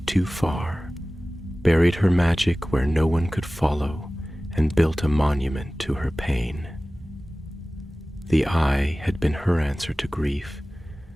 too far, buried her magic where no one could follow, and built a monument to her pain. The eye had been her answer to grief,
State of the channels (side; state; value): both; normal; correlation 0.97